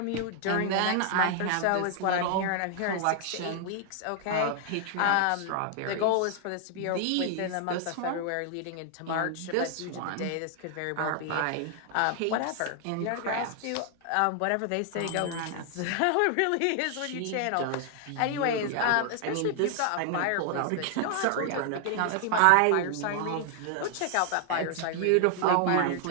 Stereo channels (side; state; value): both; different; correlation 0.00